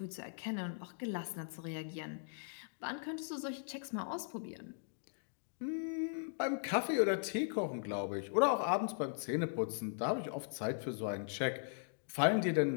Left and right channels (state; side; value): silent; right; digital silence